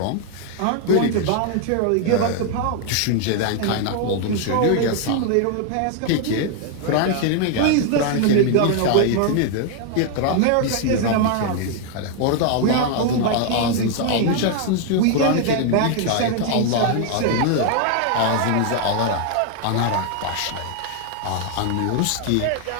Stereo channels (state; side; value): different; both; correlation 0.00